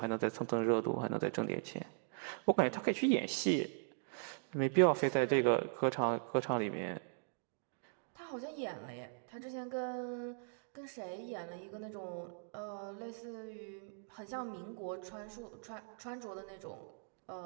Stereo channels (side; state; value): left; silent; digital silence